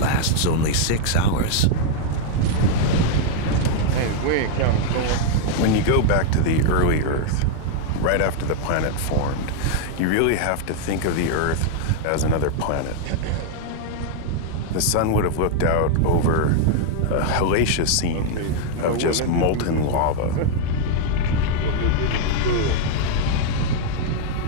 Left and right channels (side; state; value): both; different; correlation 0.00